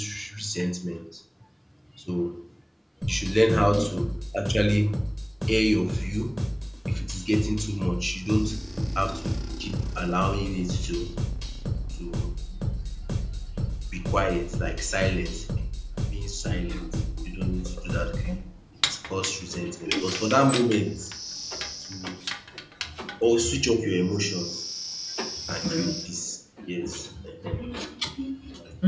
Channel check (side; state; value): both; identical; correlation 1.00